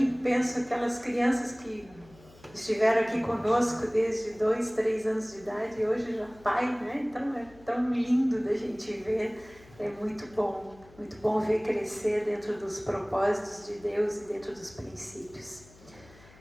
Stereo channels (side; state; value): left; noise; hum, 24 dB below the sound